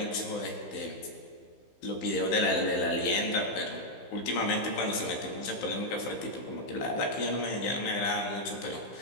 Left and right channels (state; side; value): late; right; 15 ms